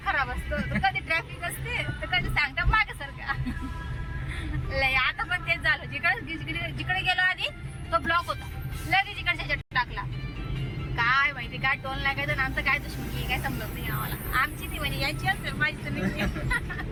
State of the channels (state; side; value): identical; both; correlation 1.00